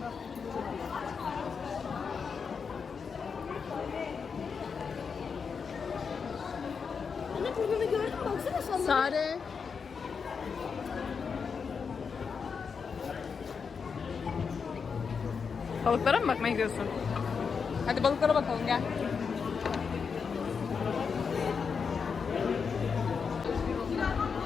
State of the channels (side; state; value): right; quieter; 5.8 dB